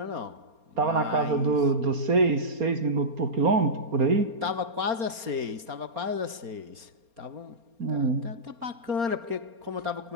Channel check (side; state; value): left; late; 4.3 ms